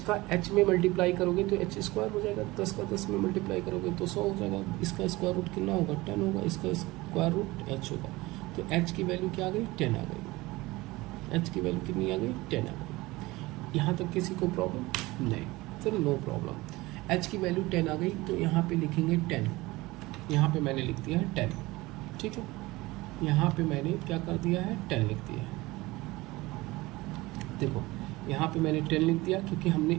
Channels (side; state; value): left; quieter; 20.7 dB